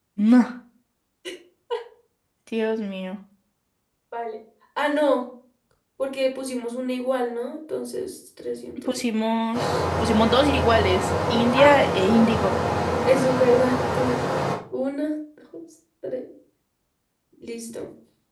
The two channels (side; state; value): both; identical; correlation 1.00